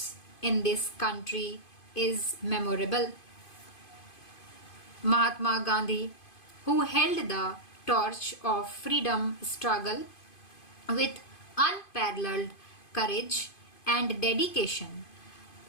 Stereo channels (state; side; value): late; right; 2.5 ms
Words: in this country is memorable. Mahatma Gandhi, who held the torch of freedom struggle with unparalleled courage and dedication,